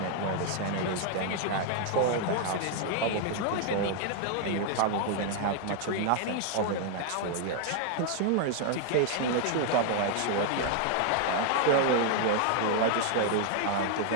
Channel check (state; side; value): different; both; correlation 0.00